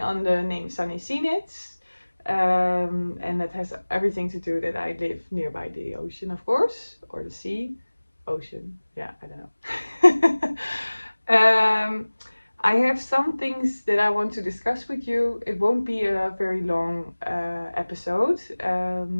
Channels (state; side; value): inverted; both; correlation -1.00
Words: on the name Sunny Sea Knits, and that has everything to do that I live nearby the ocean, of course, or the sea. Ocean, yeah, I don't know. I have some things that I want to discuss with you. It won't be a very long episode.